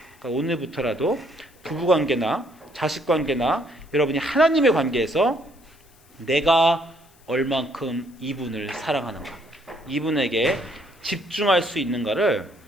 오늘부터라도 부부관계나 자식관계나 여러분이 하나님의 관계에서 내가 얼만큼 이분을 사랑하는가, 이분에게 집중할 수 있는가를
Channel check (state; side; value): noise; left; hiss, 30 dB below the sound